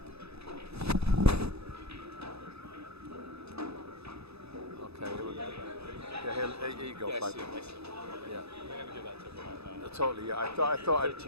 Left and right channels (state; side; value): late; left; 0.79 ms